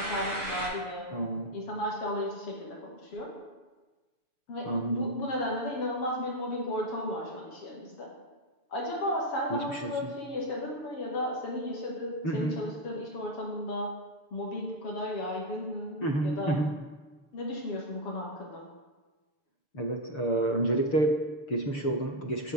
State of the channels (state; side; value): late; right; 6.7 ms